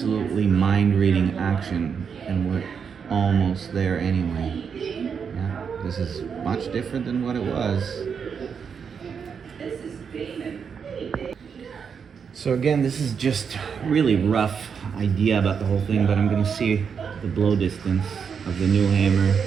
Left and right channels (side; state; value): left; quieter; 6.6 dB